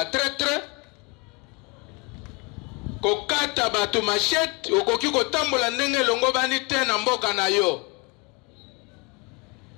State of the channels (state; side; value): quieter; right; 28.5 dB